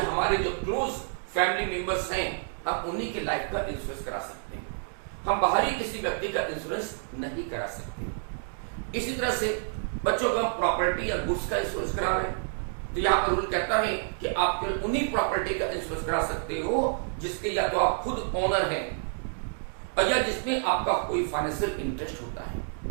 हमारे जो क्लोज फैमिली मेंबर्स हैं हम उन्हीं की लाइफ का इंश्योरेंस करा सकते हैं। हम बाहरी किसी व्यक्ति का इंश्योरेंस नहीं करा सकते। इसी तरह से बच्चों को हम प्रॉपर्टी या गुड्स का इंश्योरेंस करा रहे हैं तो यहां पर रूल कहता है कि आप केवल उन्हीं प्रॉपर्टी का इंश्योरेंस करा सकते हो जिसके या तो आप खुद ओनर हैं और या जिसमें आपका कोई फाइनेंशियल इंटरेस्ट होता है,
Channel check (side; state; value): left; silent; digital silence